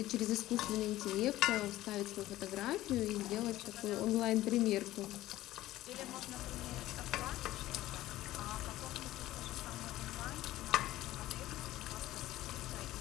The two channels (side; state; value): right; quieter; 15.6 dB